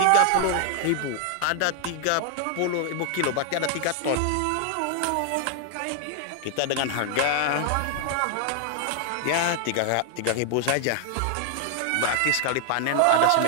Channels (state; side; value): different; both; correlation 0.00